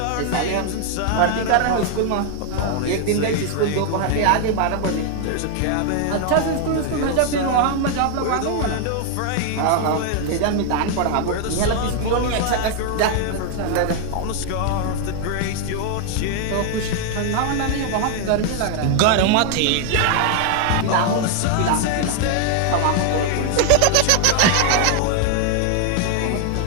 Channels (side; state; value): both; different; correlation 0.00